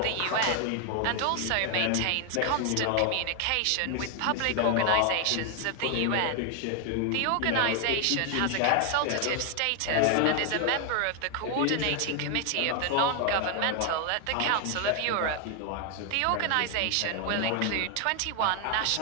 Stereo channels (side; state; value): both; different; correlation 0.01